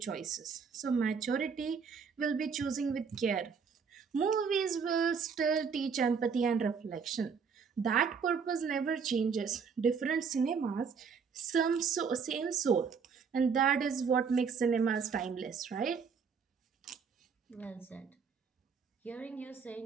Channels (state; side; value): quieter; left; 6.0 dB